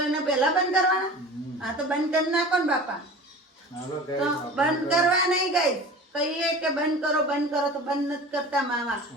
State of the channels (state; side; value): normal; both; correlation 0.38